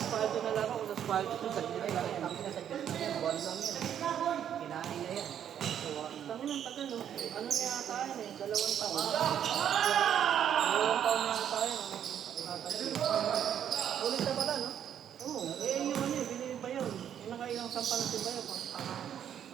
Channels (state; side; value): quieter; left; 9.5 dB